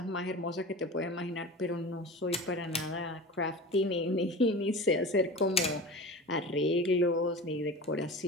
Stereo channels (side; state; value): both; normal; correlation 0.33